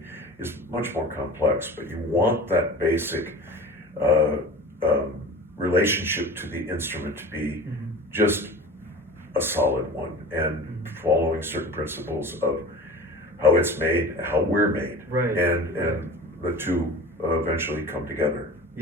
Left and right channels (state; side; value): normal; both; correlation 0.37